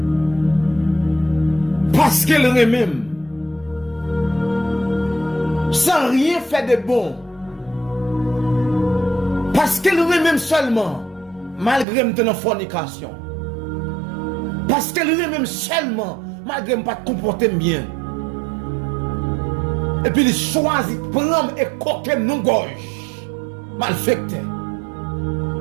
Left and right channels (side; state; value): left; drops out; at 11.9 s